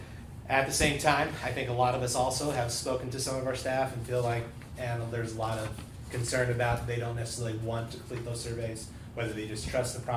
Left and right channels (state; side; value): identical; both; correlation 1.00